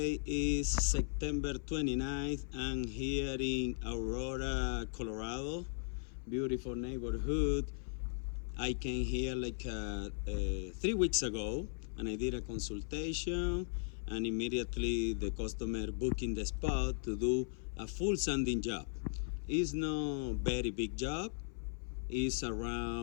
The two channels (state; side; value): silent; right; 53 dB below the other